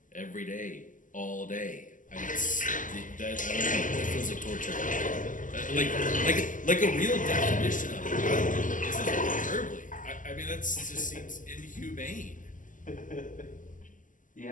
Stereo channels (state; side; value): late; right; 0.38 ms